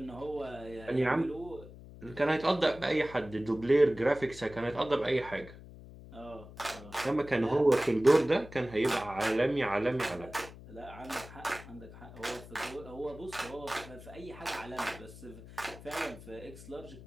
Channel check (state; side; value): noise; left; hum, 17 dB below the sound